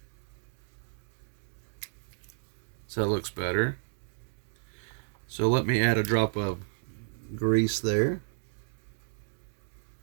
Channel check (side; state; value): left; silent; digital silence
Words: So it looks better. So let me add a drop of grease there.